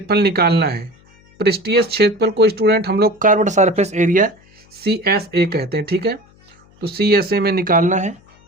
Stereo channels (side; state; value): left; noise; hum, 29 dB below the sound